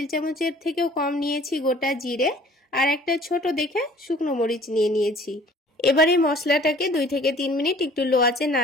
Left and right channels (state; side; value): normal; both; correlation 0.52